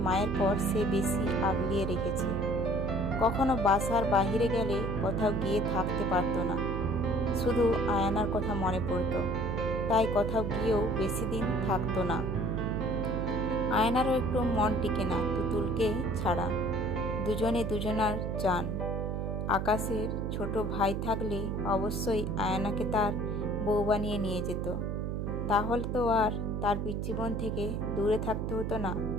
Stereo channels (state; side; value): noise; right; hum, 2 dB below the sound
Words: মায়ের পর সে বেশি আগলিয়ে রেখেছে। কখনো বাসার বাহিরে গেলে কোথাও গিয়ে থাকতে পারতো না। শুধু আয়ানার কথা মনে পড়তো, তাই কোথাও গিয়েও বেশি দিন থাকতো না। আয়নারও একটু মন টিকে না তুতুলকে ছাড়া। দুজনে দুজনার চান। আকাশের ছোট ভাই থাকলে অবশ্যই আয়নাকে তার বউ বানিয়ে নিয়ে যেত। তাহলে তো আর তার পিচ্চি বোন থেকে দূরে থাকতে হতো না।